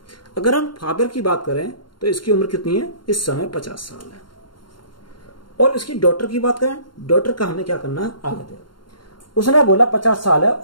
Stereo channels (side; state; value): right; late; 0.72 ms